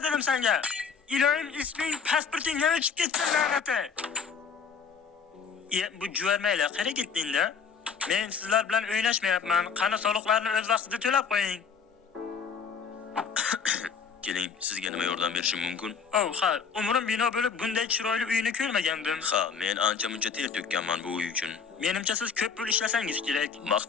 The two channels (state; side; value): quieter; right; 6.2 dB